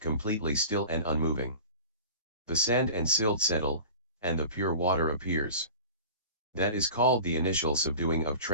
still and unmoving. The sand and silt settle, and the pure water appears. That is called the initial subduing of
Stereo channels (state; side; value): inverted; both; correlation -0.38